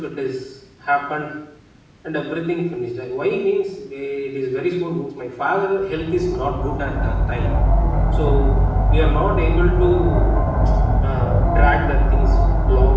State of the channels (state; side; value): identical; both; correlation 1.00